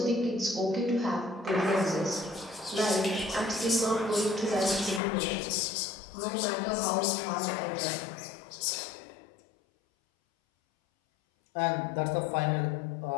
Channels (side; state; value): right; drops out; at 5.0 s